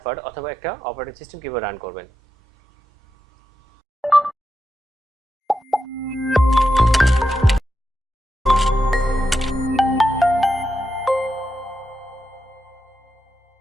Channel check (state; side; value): normal; both; correlation 0.87